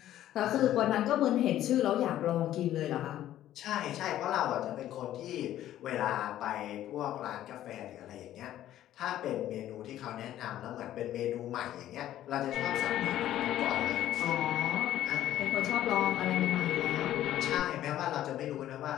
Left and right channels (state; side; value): quieter; right; 12.7 dB